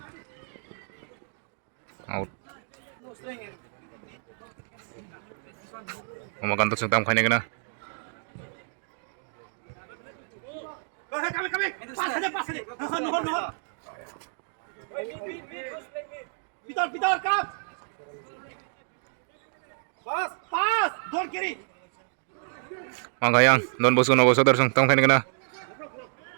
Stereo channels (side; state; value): left; silent; 57 dB below the other